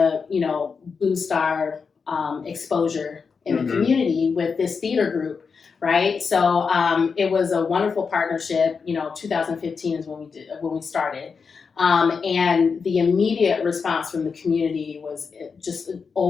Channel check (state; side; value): quieter; right; 5.4 dB